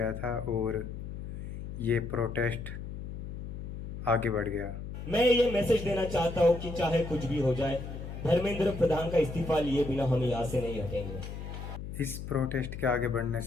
था और ये प्रोटेस्ट आगे बढ़ गया। मैं ये मैसेज देना चाहता हूं कि चाहे कुछ भी हो जाए, धर्मेंद्र प्रधान का इस्तीफा लिए बिना हम यहाँ से नहीं हटेंगे। इस प्रोटेस्ट के आगे बढ़ने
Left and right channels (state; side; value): noise; left; hum, 8 dB below the sound